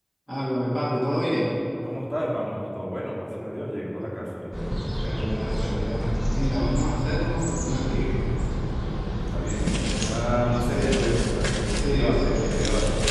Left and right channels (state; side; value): identical; both; correlation 1.00